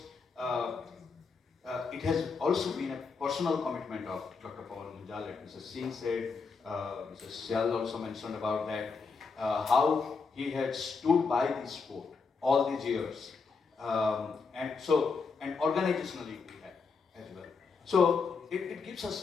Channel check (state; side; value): quieter; right; 4.9 dB